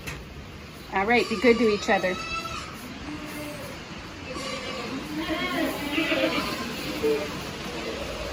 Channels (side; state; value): both; identical; correlation 1.00